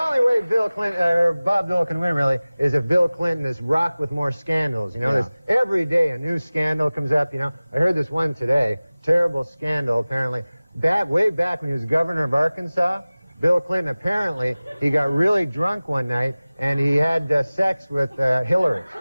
way Bill Clinton, or Bob Dole can win, really, is if Bill Clinton is rocked with more scandals. You know, there's every day a new scandal comes up, you know. I heard this one today, terrible scandal, apparently. Way back when he was governor of Arkansas, Bill Clinton, apparently, he got really drunk one night, and he had sex with Hillary.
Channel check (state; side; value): inverted; both; correlation -0.98